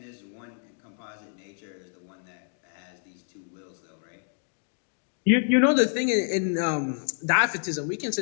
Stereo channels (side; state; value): right; silent; 56 dB below the other